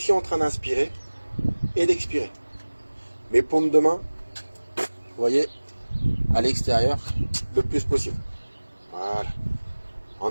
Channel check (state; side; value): inverted; both; correlation -1.00